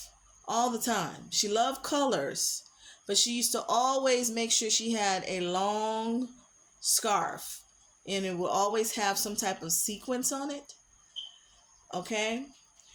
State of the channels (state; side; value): identical; both; correlation 1.00